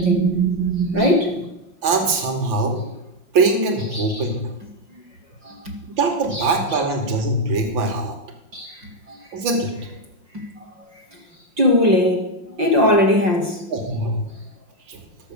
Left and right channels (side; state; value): left; late; 6.0 ms